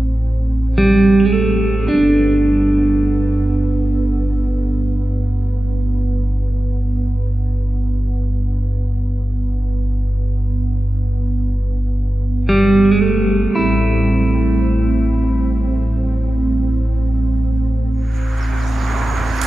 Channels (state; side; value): normal; both; correlation 0.94